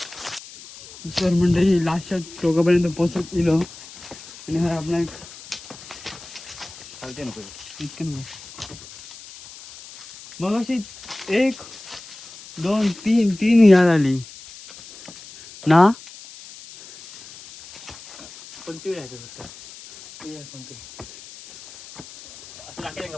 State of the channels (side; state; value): left; noise; hiss, 17 dB below the sound